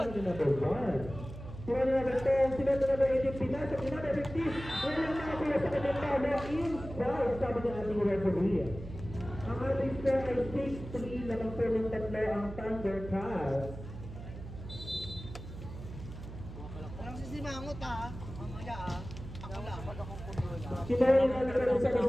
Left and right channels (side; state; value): right; noise; hum, 12 dB below the sound